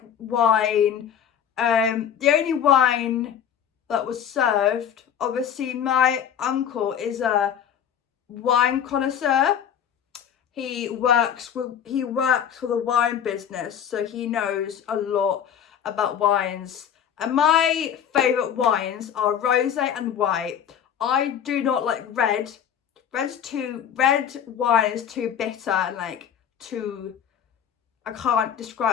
wine. The only wine that was served, obviously my uncle is a wine connoisseur. He works for the wine business, so he knows a lot about wines. And my favourite wines are rosé and white. I do not like red. Red wine is too bitter and like too, I can't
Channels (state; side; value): quieter; right; 8.8 dB